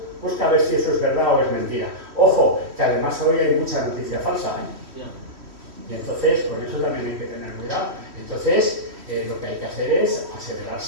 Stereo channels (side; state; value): left; late; 3.1 ms